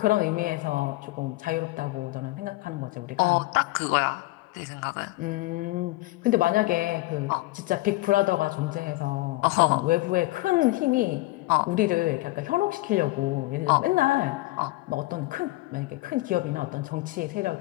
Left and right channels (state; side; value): quieter; right; 19.9 dB